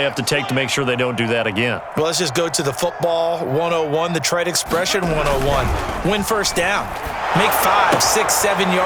have to take to make sure they don't do that again? Well, let's just go to the football 101, the trade expression 101. Win first down. Make 5, 6, 7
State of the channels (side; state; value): both; identical; correlation 1.00